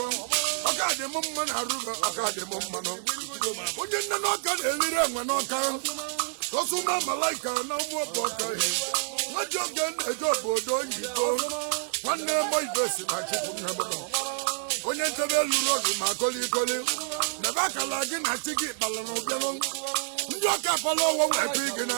dị m mma na arụgo ọka dị m mmanụ onye nne na ọka na-eriri enwe n'ọka osuma malaika na ụmụ ọbụ ọka nwaji oge na-eje obodo oyibo nwanne mo ibe si na chukwu nnabụọ onye nchebe lụrụ ọdụ ma kolikoli nebe akala gị na chi gị kpala na ụbịanụ ndị ọka fọlọ ọwọ weta gị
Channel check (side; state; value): left; silent; digital silence